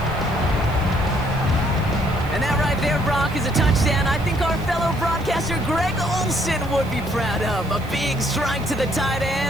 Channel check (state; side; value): noise; right; hiss, 22 dB below the sound